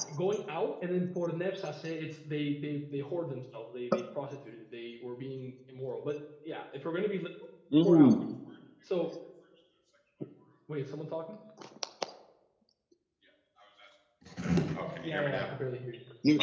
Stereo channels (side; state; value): both; identical; correlation 1.00